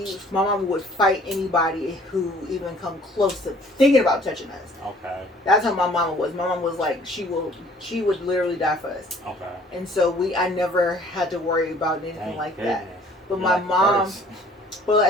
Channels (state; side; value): normal; both; correlation 0.55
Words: fight anybody who even come close to thinking about touching us. Okay. That's how my mama was. My mom was like, she would literally die for us. Okay. And so I never had to worry about anything like that. But my mom, but